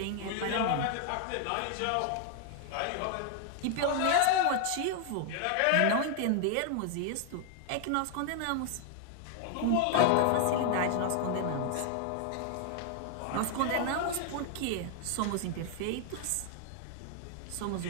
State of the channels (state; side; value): different; both; correlation 0.00